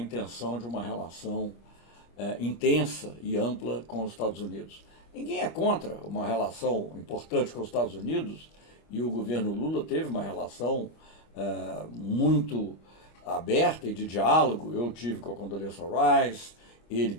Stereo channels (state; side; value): late; right; 35 ms